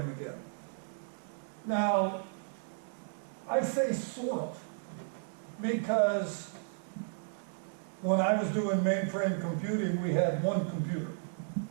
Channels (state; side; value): silent; left; digital silence